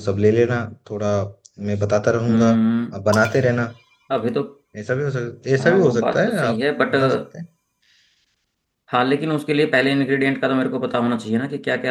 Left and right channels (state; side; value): identical; both; correlation 1.00